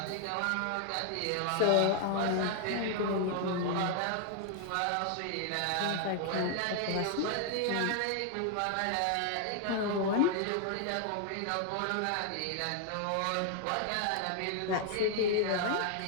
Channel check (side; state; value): both; different; correlation 0.00